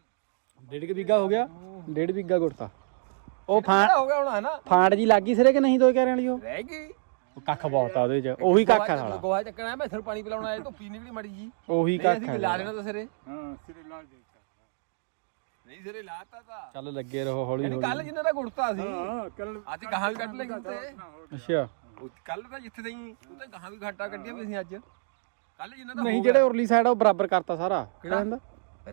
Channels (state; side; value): silent; left; digital silence